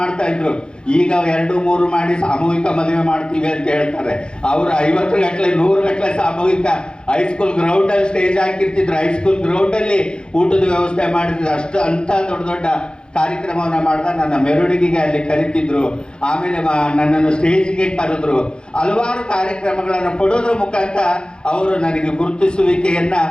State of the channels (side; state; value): right; late; 0.050 ms